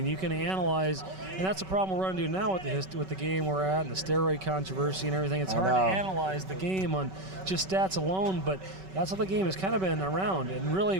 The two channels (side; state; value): left; late; 5.3 ms